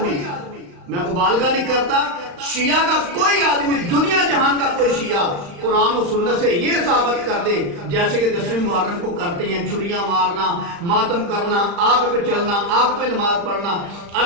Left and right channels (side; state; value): left; late; 35 ms